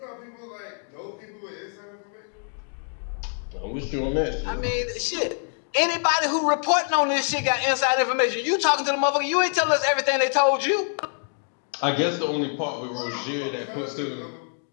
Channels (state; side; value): silent; right; 55 dB below the other